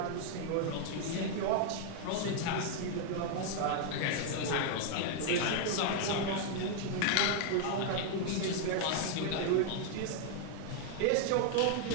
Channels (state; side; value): different; both; correlation 0.00